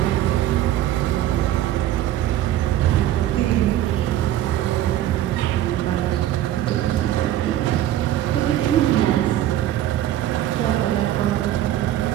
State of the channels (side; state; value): left; quieter; 12.8 dB